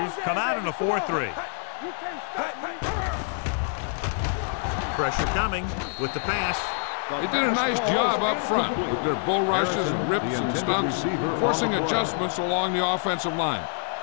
come out in a 4-3. You can't stop me. Pressure coming with the pass. They did a nice job up front with their bull rushes and rips and stunts, forcing adjustments along the offensive line.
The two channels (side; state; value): right; silent; 61 dB below the other